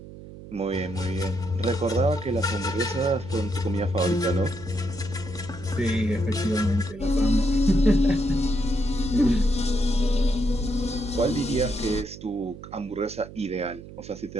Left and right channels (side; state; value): right; noise; hum, 15 dB below the sound